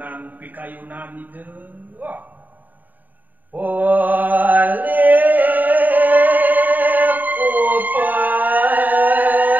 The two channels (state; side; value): late; left; 0.084 ms